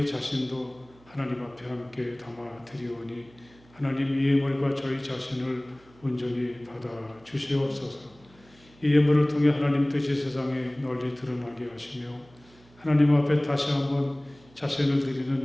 자신도 하나님 앞에 함께 담아 드리오니 하나님 이 예물과 저희 자신을 온전히 받아 주시옵소서. 이 예물을 통해 하나님 뜻이 세상에 널리 드러나게 하시며 하나님 앞에 다시 한번 자신을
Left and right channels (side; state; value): right; noise; hum, 27 dB below the sound